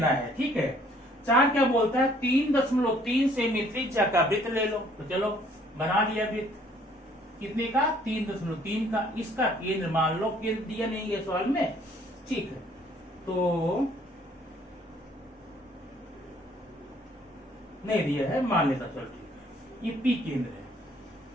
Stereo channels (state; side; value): normal; both; correlation 0.61